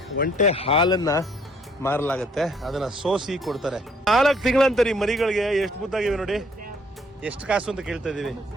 ಒಂಟೆ ಹಾಲನ್ನ ಮಾರಲಾಗತ್ತೆ, ಅದನ್ನ ಸೋಸಿ ಕೊಡ್ತಾರೆ. 4 ತಿಂಗಳಂತರಿ ಮರಿಗಳಿಗೆ. ಎಷ್ಟು ಮುದ್ದಾಗಿವೆ ನೋಡಿ. ಎಷ್ಟು ಕಾಸು ಅಂತ ಕೇಳ್ತಾ ಇದೀವಿ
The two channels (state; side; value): normal; both; correlation 0.63